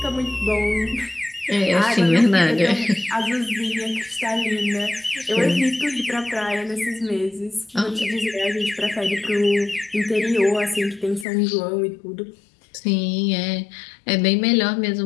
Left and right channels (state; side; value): drops out; right; at 11.2 s